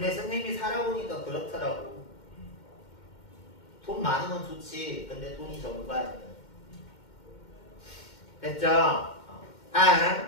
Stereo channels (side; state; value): right; late; 2.1 ms